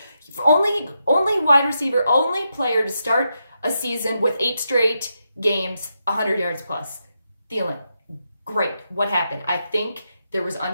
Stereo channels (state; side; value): inverted; both; correlation -0.84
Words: Only wide receiver, only player to start a season with 8 straight games, 100 yards plus. Thielen, great. What happened? I think there was